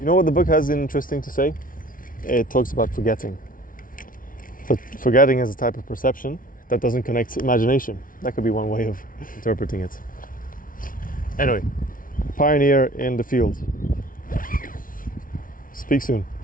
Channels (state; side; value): late; right; 0.39 ms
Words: know what the book has interesting to say? It talks about forgetting. But forgetting is a type of perception that doesn't connect to imagination. That could be one way of interpreting it. Anyway, pioneer in the field. Speak soon.